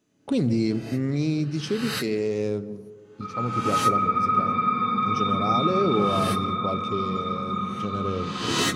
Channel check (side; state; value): both; identical; correlation 1.00